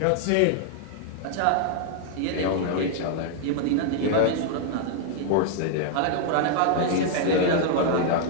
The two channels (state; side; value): different; both; correlation 0.00